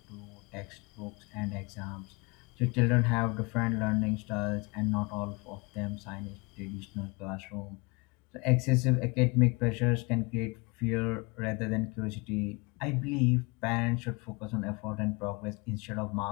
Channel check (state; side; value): quieter; right; 28.2 dB